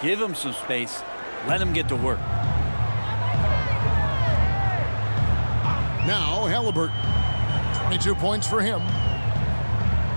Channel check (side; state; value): both; inverted; correlation -1.00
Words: give him some space, let him get to work. Now Halliburton. 22 points for him.